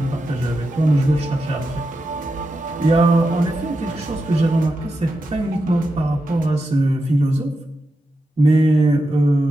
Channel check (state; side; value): normal; both; correlation 0.88